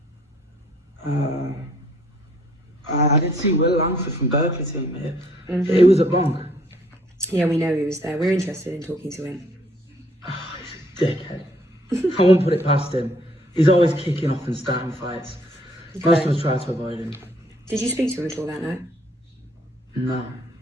I did see Will Langford from Berkley team here. He was a bonk. Yeah, we know he was there. We're interested in talking to him. Oh, he's a dickhead. I won't put it past him. He's always kicking off and starting fights. Okay. Most of us try to avoid him. Did you speak to him at all that night? No,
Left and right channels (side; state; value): both; normal; correlation 0.63